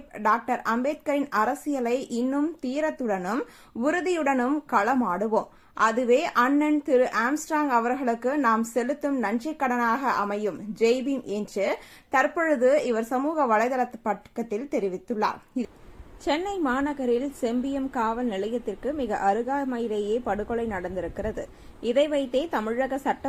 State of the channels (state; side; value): identical; both; correlation 1.00